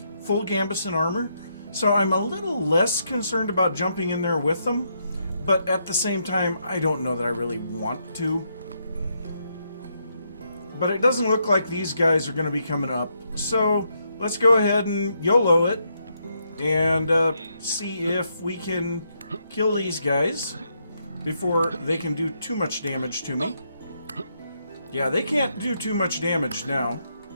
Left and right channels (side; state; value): both; inverted; correlation -0.78